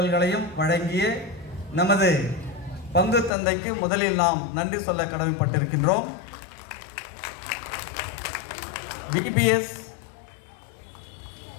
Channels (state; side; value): drops out; right; at 3.3 s